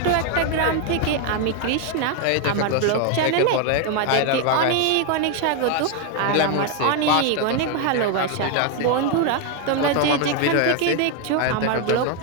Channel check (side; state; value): both; different; correlation 0.01